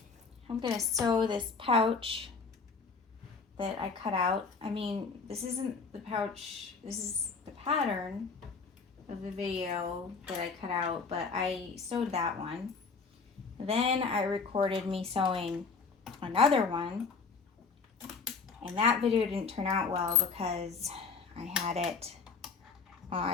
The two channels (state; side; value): quieter; right; 4.9 dB